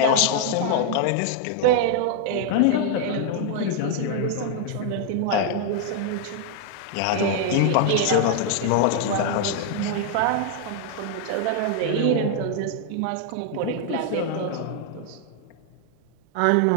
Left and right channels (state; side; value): different; both; correlation 0.00